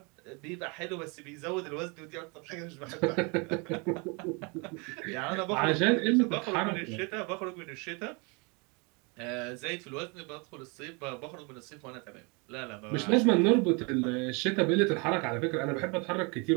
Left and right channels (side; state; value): left; quieter; 30.8 dB